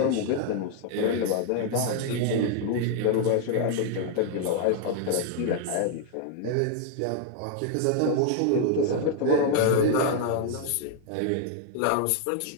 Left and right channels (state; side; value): different; both; correlation 0.00